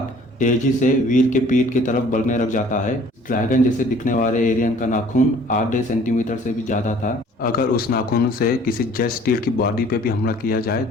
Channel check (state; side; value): normal; both; correlation 0.54